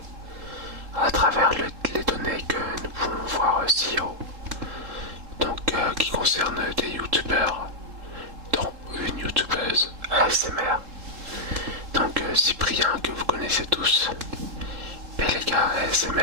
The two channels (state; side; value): late; left; 3.7 ms